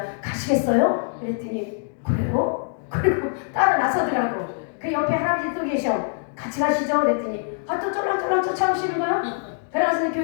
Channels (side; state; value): right; silent; 63 dB below the other